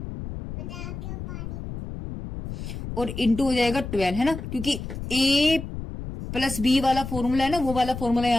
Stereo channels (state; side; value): noise; left; rumble, 8 dB below the sound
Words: और इंटू हो जाएगा 12 है ना, क्योंकि a प्लस बी वाला फॉर्मूला है ना, वो वाला फॉर्मूला